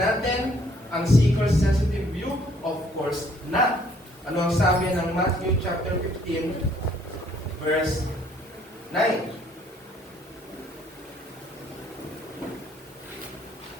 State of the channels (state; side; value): normal; both; correlation 0.63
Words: ang seeker-sensitive view? Of course not. Ano ang sabi ng Matthew chapter 15, verse 9?